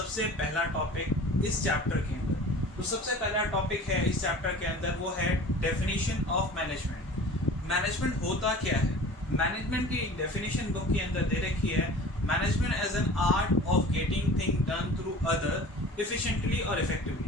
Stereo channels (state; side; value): normal; both; correlation 0.41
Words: पहला टॉपिक इस चैप्टर के अंदर। तो सबसे पहला टॉपिक है इस चैप्टर के अंदर, वो है डेफिनेशन ऑफ मैनेजमेंट। मैनेजमेंट होता क्या है? मैनेजमेंट की डेफिनेशन बुक के अंदर दे रखी है, management as an art of getting thing done through other efficiently और